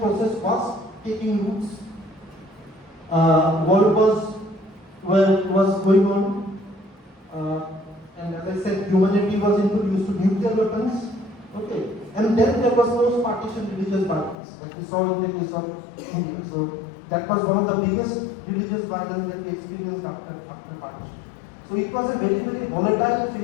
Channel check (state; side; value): drops out; right; at 14.4 s